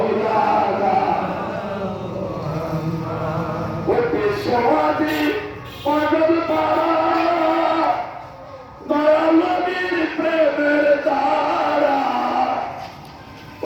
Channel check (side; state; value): both; identical; correlation 1.00